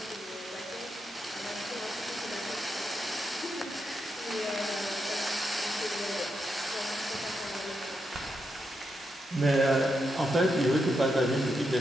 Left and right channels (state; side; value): normal; both; correlation 0.84